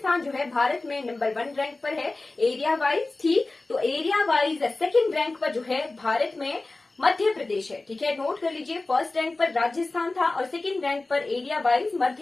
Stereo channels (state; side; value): quieter; right; 3.2 dB